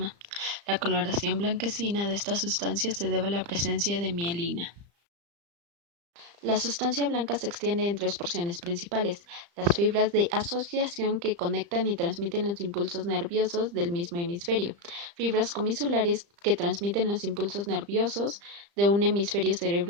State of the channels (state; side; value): late; left; 35 ms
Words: La coloración blanquecina de esta sustancia se debe a la presencia de mielina. La sustancia blanca se extiende en tres porciones principales: las fibras de asociación que conectan y transmiten los impulsos nerviosos del mismo hemisferio, fibras comisulares que transmiten los impulsos nerviosos de un hemisferio